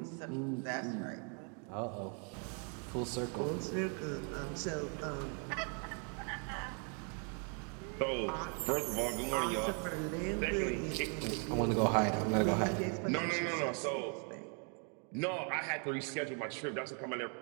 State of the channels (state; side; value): quieter; left; 39.8 dB